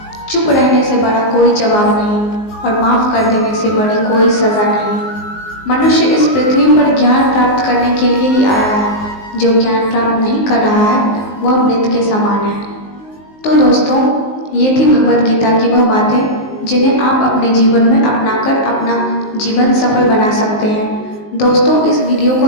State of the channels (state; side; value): late; right; 19 ms